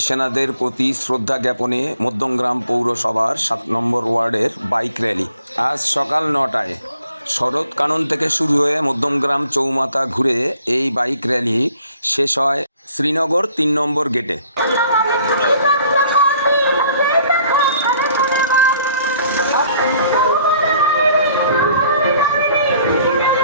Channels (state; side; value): inverted; both; correlation -0.61